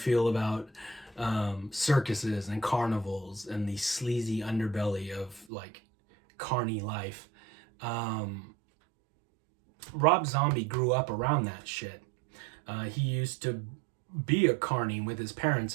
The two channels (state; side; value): drops out; left; at 5.5 s